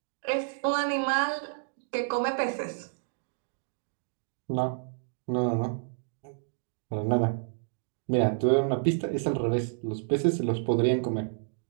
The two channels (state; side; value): silent; left; digital silence